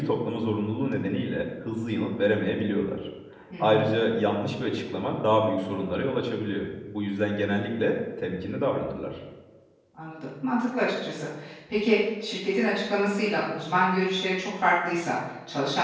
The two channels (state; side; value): identical; both; correlation 1.00